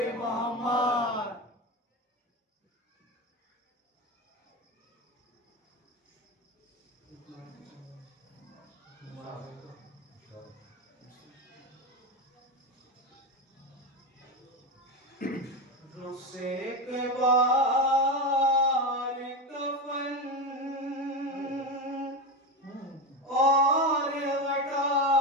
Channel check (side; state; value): both; normal; correlation 0.17